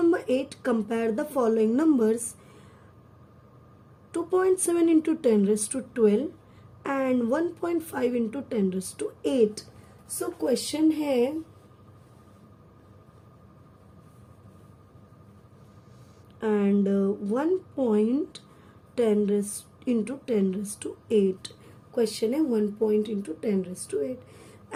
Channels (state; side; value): identical; both; correlation 1.00